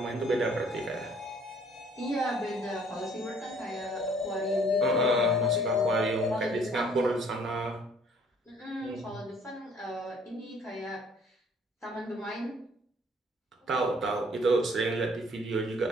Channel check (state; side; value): normal; both; correlation 0.59